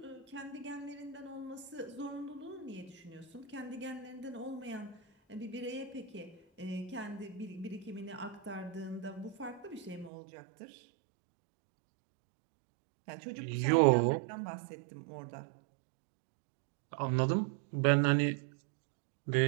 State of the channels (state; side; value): drops out; left; at 10.1 s